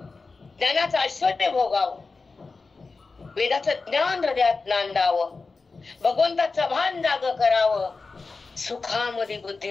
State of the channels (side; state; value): right; quieter; 4.1 dB